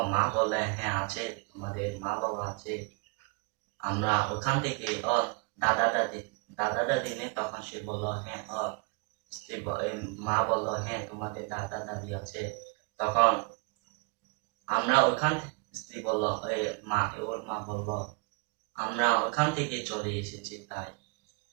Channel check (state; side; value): quieter; left; 31.3 dB